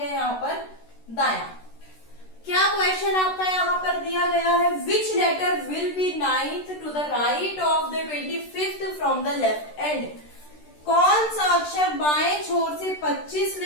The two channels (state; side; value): late; right; 13 ms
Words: यहाँ पर दायां। क्या क्वेश्चन आपका यहाँ पर दिया गया है, which letter will be 9th to the right of द 25th from the left end, कौन सा अक्षर बाएं छोर से